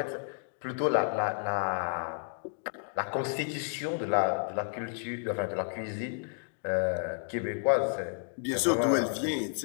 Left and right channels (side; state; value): right; silent; 57 dB below the other